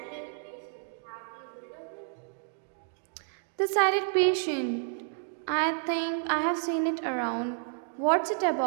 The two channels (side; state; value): left; silent; digital silence